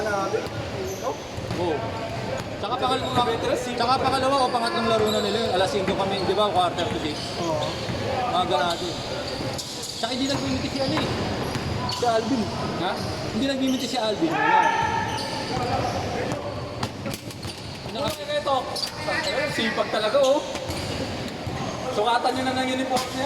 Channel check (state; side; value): identical; both; correlation 1.00